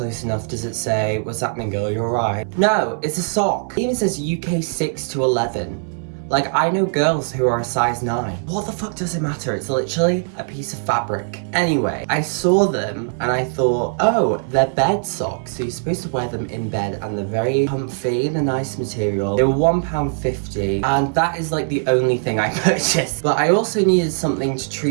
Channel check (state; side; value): silent; left; digital silence